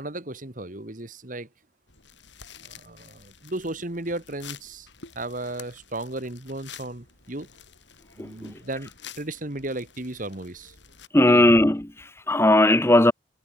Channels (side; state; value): both; normal; correlation 0.70